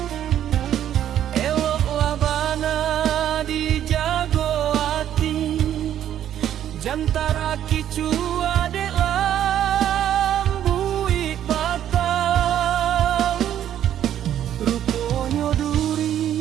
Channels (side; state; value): left; quieter; 10.8 dB